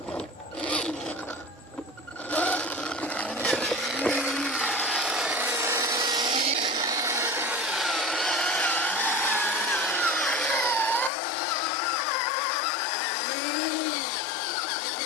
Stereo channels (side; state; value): right; drops out; at 11.1 s